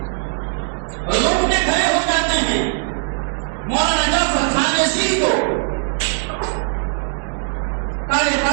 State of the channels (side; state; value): left; silent; 66 dB below the other